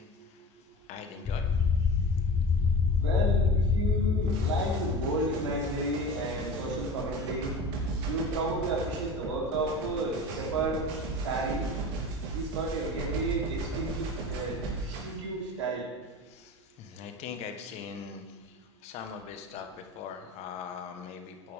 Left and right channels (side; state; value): both; normal; correlation 0.33